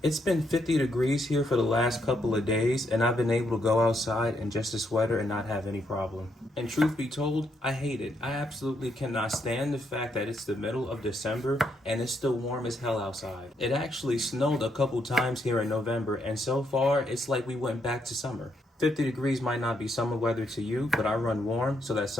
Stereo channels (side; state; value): both; normal; correlation 0.76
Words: it's been 50 degrees here for the last couple of days, and I've been able to go outside in just a sweater and not have any problem. And truth be told, I hate it. I absolutely cannot stand the fact that it's the middle of December and it's still warm as hell outside. It actually snowed a couple times here in November, and so far it's like we went back to summer. 50 degrees might not be summer weather to you, but I run warm, so that's